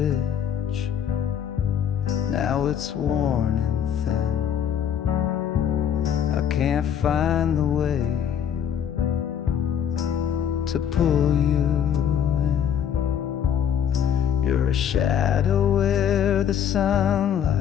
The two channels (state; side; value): quieter; right; 8.9 dB